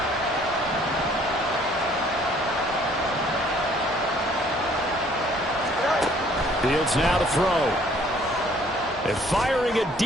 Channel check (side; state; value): both; normal; correlation 0.59